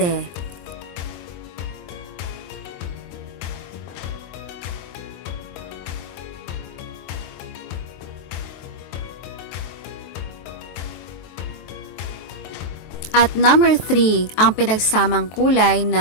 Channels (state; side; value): late; right; 23 ms